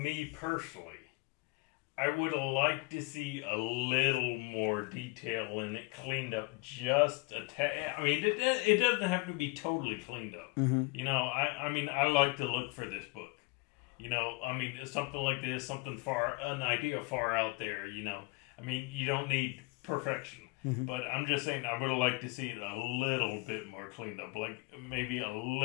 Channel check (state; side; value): quieter; right; 26.7 dB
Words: personally, I would have liked to see a little more detail in it, cleaned up just a tad. It doesn't have to be totally cleaned up. I like to look for this book. Something like this, an idea far out there. You don't need perfection. But I'm just saying, I would have liked to see it a little bit more cleaned up, like maybe a